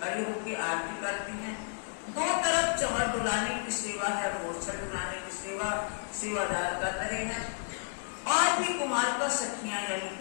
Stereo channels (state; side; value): silent; right; digital silence